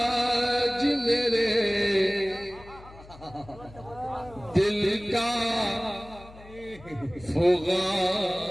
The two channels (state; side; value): noise; left; hum, 20 dB below the sound